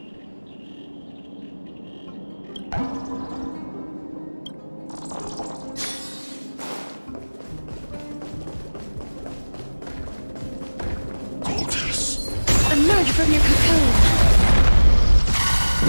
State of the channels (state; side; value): inverted; both; correlation -1.00